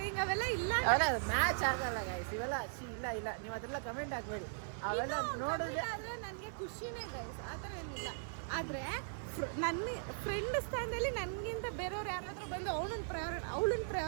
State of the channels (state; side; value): silent; left; digital silence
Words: ಅವೆಲ್ಲ ಇಲ್ಲ, ಮ್ಯಾಚ್ ಆಗಲ್ಲ ಗೈಸ್ ಇವೆಲ್ಲ. ಇಲ್ಲ ನೀವು ಅದೆಲ್ಲ ಕಮೆಂಟ್ ಹಾಕ್ಬೇಡಿ. ಅವೆಲ್ಲ ನೋಡಿದ್ರೆ ಆದ್ರೆ ನನಗೆ ಖುಷಿನೇ ಗೈಸ್, ಆ ಥರ ಏನಿಲ್ಲ. ಆದರೆ ನನ್ನ ಫ್ರೆಂಡ್ ಸ್ಥಾನದಲ್ಲಿ ನನಗಿಂತ ಬೇರೆಯವ್ರು ಯಾರಾದರೂ ಬಂದು ಅವಳನ್ನ